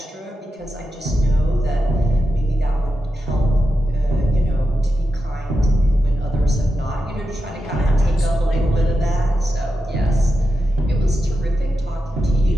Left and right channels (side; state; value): both; normal; correlation 0.89